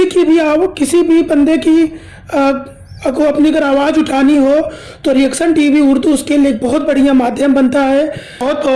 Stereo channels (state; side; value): identical; both; correlation 1.00